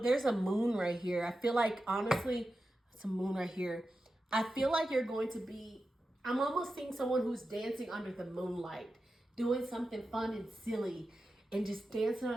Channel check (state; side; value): normal; both; correlation 0.92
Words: there's a moon right here. I feel like, honestly, it's a moon right here. I feel like you're going to be, I'm almost seeing someone who's dancing under the moonlight, doing something fun and silly, and just dancing